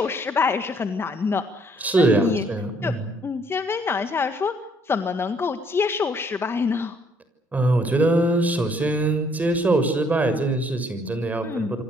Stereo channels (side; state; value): both; normal; correlation 0.65